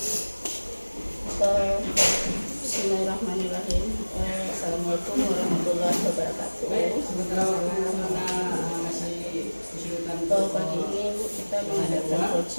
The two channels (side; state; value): both; inverted; correlation -1.00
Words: Bismillahirrahmanirrahim. Assalamualaikum warahmatullahi wabarakatuh. Pagi ini Bu, kita mengadakan